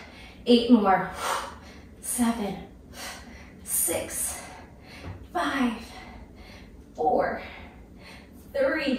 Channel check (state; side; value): identical; both; correlation 1.00